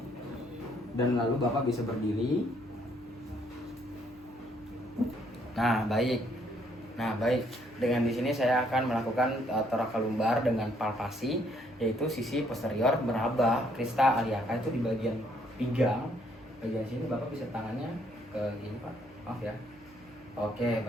Dan lalu Bapak bisa berdiri. Nah, baik. Dengan di sini saya akan melakukan thoracal lumbar dengan palpasi, yaitu sisi posterior meraba crista iliaca itu di bagian pinggang. Bagian sini Bapak bisa tangannya ke gini Pak. Maaf ya. Oke,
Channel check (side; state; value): left; noise; hum, 29 dB below the sound